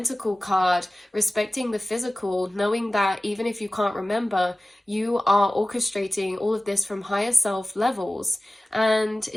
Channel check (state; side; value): normal; both; correlation 0.97